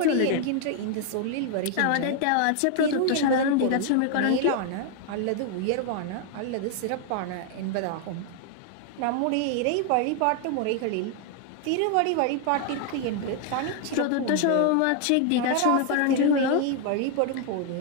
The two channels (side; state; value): both; different; correlation 0.00